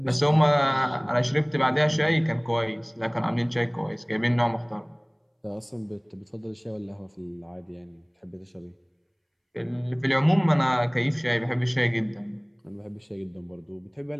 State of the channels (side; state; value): both; identical; correlation 1.00